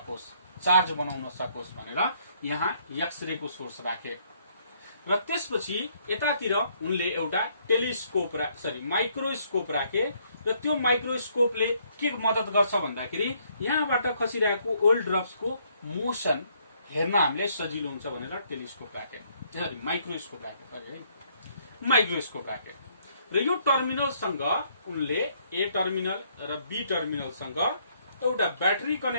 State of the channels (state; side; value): inverted; both; correlation -0.68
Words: चार्ज बनाउन सकोस् भनेर यहाँ एक्सरे को सोर्स राखे। र त्यसपछि यतातिर उनले एउटा टेलिस्कोप माइक्रोस्कोप राखे र त्यो माइक्रोस्कोपले के मद्दत गर्छ भन्दाखेरि यहाँबाट खसिरहेको ओल्ड ड्रप्सको मोसन हेर्न हामीले सजिलो हुन्छ भनेर टेलिस्कोप राखे, माइक्रोस्कोप राखे। र यो टर्मिनलसँग उनले ए टर्मिनल र बी टर्मिनलसँग एउटा ब्याट्री